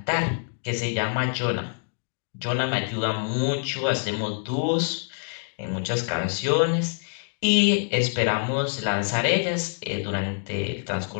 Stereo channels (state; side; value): silent; right; digital silence